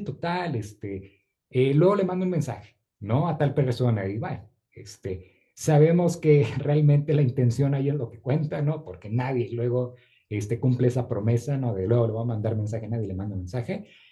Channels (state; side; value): identical; both; correlation 1.00